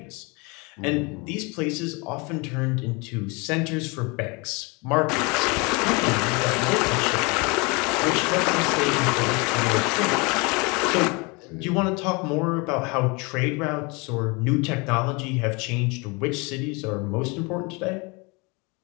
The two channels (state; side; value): quieter; right; 28.5 dB